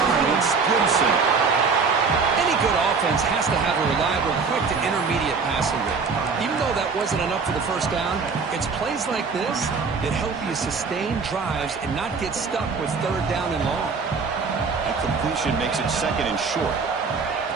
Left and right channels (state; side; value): quieter; left; 5.0 dB